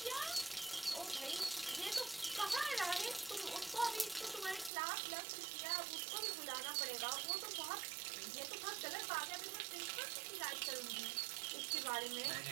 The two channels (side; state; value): left; drops out; at 4.7 s